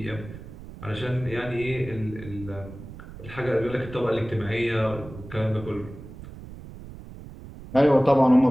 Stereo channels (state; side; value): noise; right; rumble, 14 dB below the sound